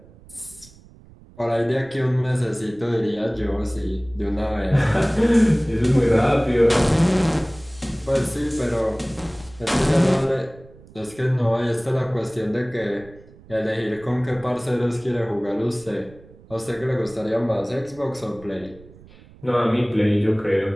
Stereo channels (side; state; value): right; noise; rumble, 23 dB below the sound